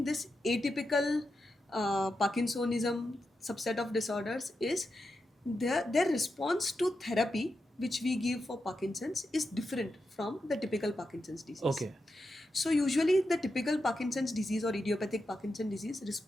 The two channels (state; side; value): normal; both; correlation 0.88